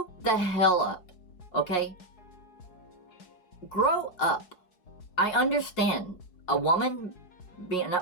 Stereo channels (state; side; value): late; right; 4.7 ms